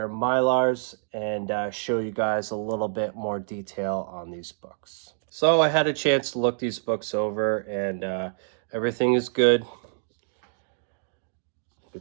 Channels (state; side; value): silent; left; digital silence